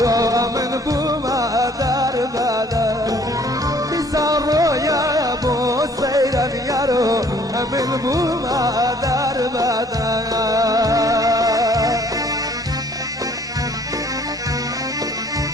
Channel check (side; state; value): both; normal; correlation 0.58